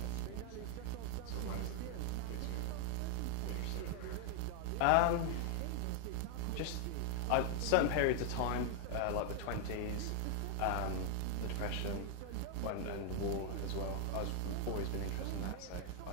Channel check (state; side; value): different; both; correlation 0.00